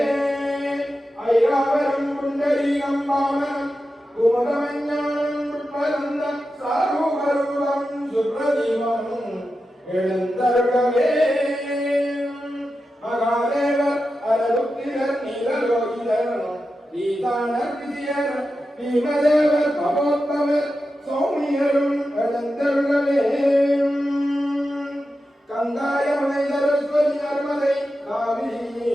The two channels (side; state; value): both; normal; correlation 0.91